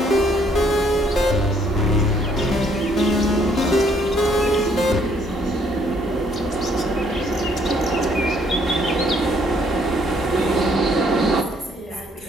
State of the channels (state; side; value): normal; both; correlation 0.66